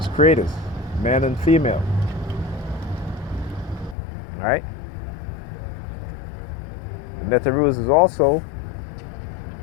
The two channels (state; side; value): drops out; right; at 4.0 s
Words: creators, man and female. Right? Neterus is also